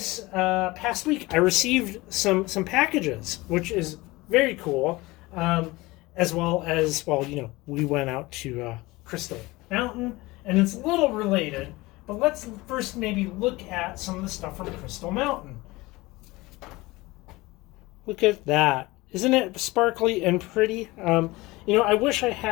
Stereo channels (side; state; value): right; quieter; 21.2 dB